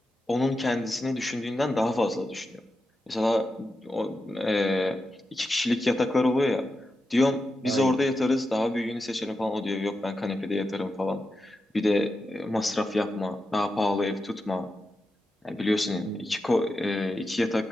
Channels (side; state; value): both; normal; correlation 0.89